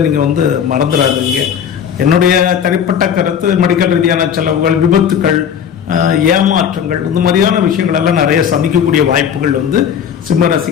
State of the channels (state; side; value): quieter; right; 8.2 dB